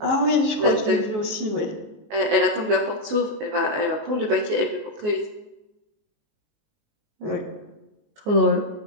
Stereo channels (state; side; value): late; left; 19 ms